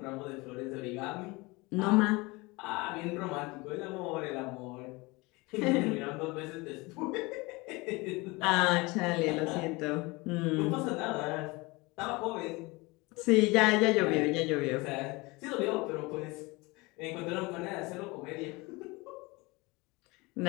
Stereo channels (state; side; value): quieter; right; 24.3 dB